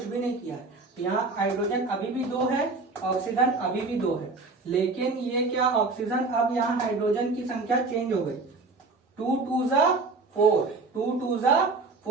भी नहीं किया है, यहाँ हाइड्रोजन अभी भी 2 है, ऑक्सीजन अभी भी 2 है, लेकिन ये क्या, ऑक्सीजन अब यहाँ हाइड्रोजन की संख्या चेंज हो गई, 2 2 जा 4, 2 2 जा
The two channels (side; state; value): left; quieter; 3.7 dB